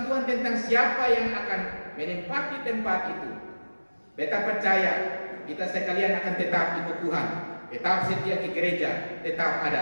Tuhan tentang siapa yang akan menempati tempat itu, beta percaya kita sekalian akan tetap ikut Tuhan, tetap setia ke gereja, tetap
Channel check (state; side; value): inverted; both; correlation -1.00